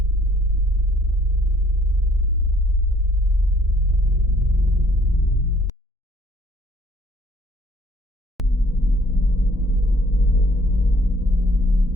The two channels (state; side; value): normal; both; correlation 0.60